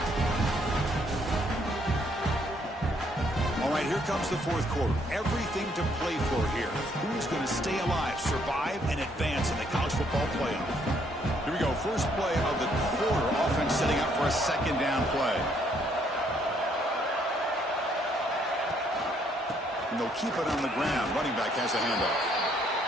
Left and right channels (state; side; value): normal; both; correlation 0.69